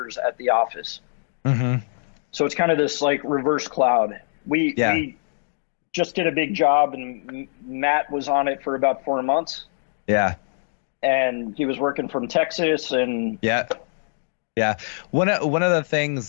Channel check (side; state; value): right; silent; 63 dB below the other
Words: at the office. So it's kind of this like reverse cloud. We just did a big job, and Matt was on it for about 4 months. Yeah. And he was working from Texas, and yeah. One of the